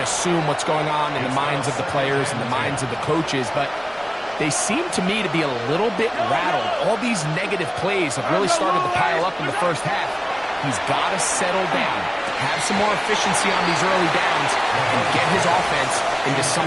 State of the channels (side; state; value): both; identical; correlation 1.00